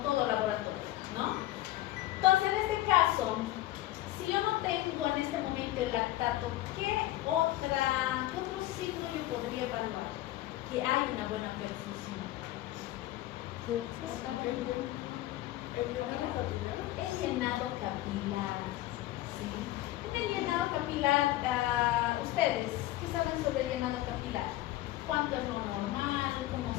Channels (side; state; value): right; quieter; 15.8 dB